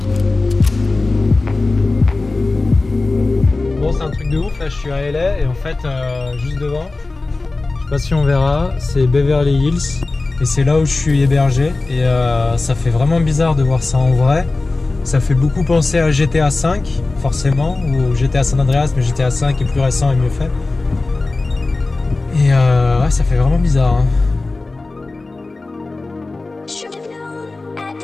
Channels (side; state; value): right; quieter; 3.4 dB